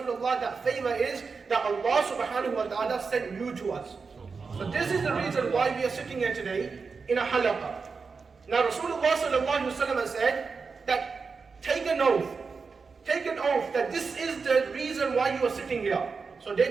that favor is that Allah subhanahu wa ta'ala sent you to us. So this is the reason why we are sitting here today in a halaqa. Now Rasulullah sallallahu alaihi wasallam said that take an oath that this is the reason why you are sitting here. So they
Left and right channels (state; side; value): quieter; left; 4.9 dB